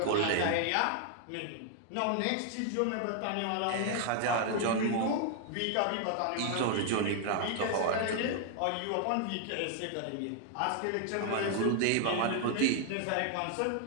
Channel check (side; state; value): both; different; correlation 0.00